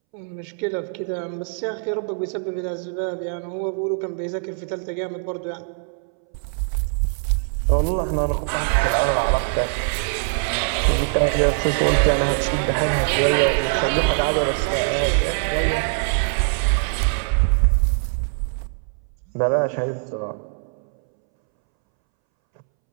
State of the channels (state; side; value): silent; left; 64 dB below the other